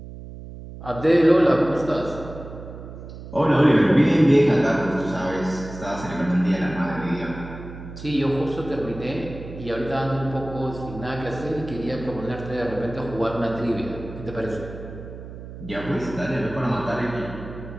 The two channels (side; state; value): right; noise; hum, 13 dB below the sound